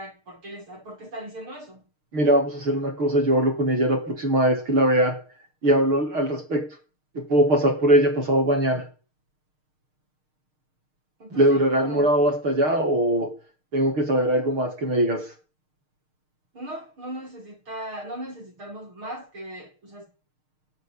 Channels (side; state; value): left; late; 6.5 ms